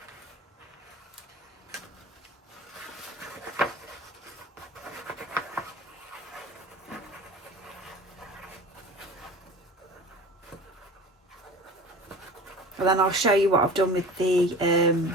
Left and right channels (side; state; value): both; normal; correlation 0.38